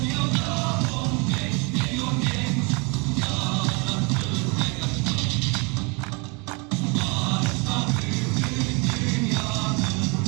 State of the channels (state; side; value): quieter; left; 30.6 dB